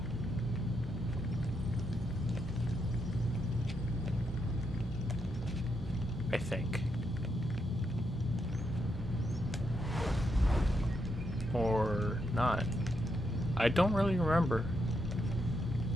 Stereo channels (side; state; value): both; normal; correlation 0.81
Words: I think. Or not. I don't really remember.